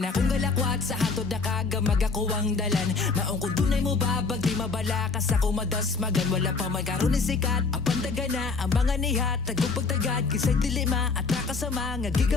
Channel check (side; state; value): right; quieter; 4.4 dB